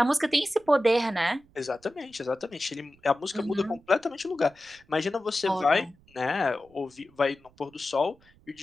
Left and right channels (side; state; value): right; noise; rumble, 30 dB below the sound